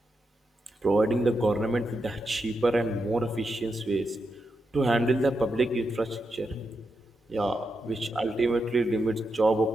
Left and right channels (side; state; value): both; normal; correlation 0.85